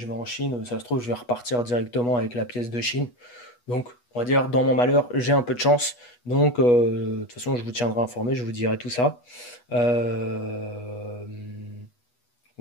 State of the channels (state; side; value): late; right; 8.2 ms